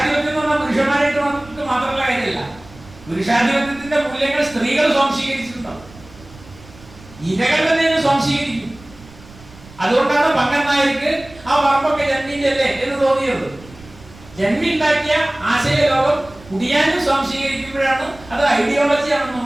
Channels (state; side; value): noise; right; rumble, 21 dB below the sound